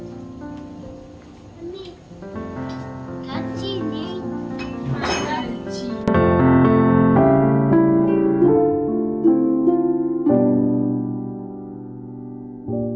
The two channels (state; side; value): identical; both; correlation 1.00